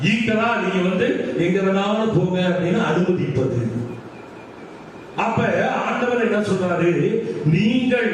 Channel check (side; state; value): both; identical; correlation 1.00